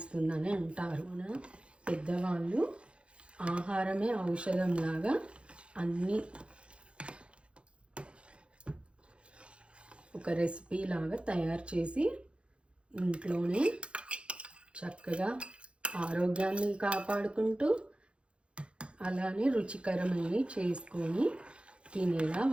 అంటారు. మన పెద్దవాళ్ళు ఆహారమే ఔషధంలాగా అన్నీ ఒక రెసిపీ లాగా తయారు చేసి ఇంట్లోనే చక్కగా ఆరోగ్యాన్ని కాపాడుకుంటూ అలానే రుచికరమైనవి చేసుకొని తినేలా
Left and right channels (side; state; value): left; late; 0.058 ms